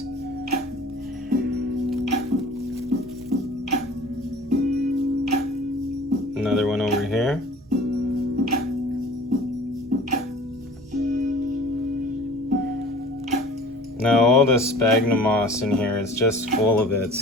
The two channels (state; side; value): normal; both; correlation 0.45